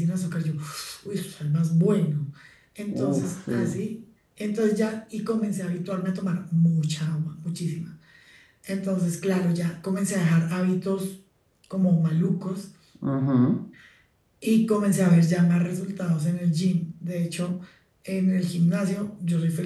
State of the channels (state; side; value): identical; both; correlation 1.00